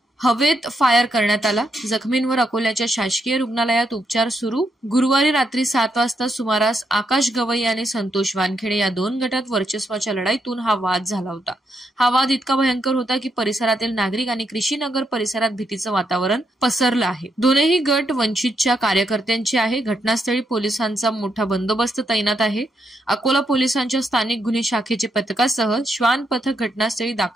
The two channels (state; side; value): normal; both; correlation 0.79